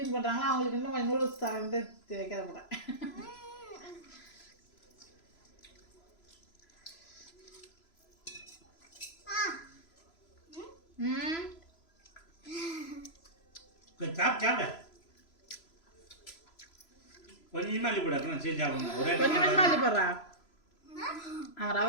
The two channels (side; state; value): right; late; 3.0 ms